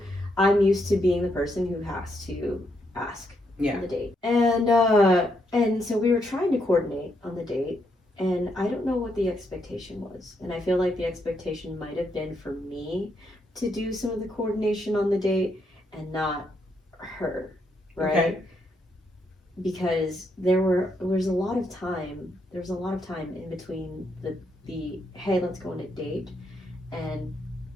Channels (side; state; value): both; normal; correlation 0.78